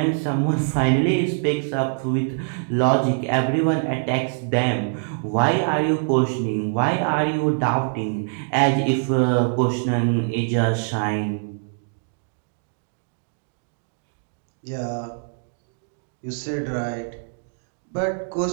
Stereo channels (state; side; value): silent; left; 59 dB below the other